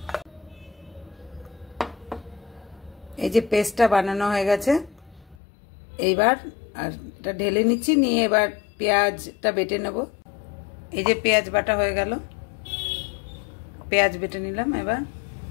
এই যে পেস্টটা বানানো হয়ে গেছে, এইবার আর এটা ঢেলে নিচ্ছি, নিয়ে এবার পেঁয়াজটা বেটে নেব। এই যে পেঁয়াজ বাটা হয়ে গেল, পেঁয়াজ বেটে নিলাম।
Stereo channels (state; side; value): drops out; right; at 5.4 s